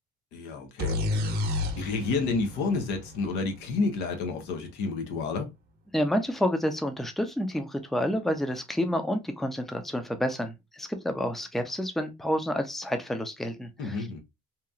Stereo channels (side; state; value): both; normal; correlation 0.65